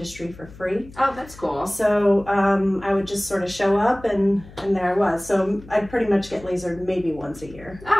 for free. Oh, that's cool. So I would just sort of show up and there I was. So I'd pretty much get lasered maybe once a year.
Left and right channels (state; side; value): noise; left; hum, 19 dB below the sound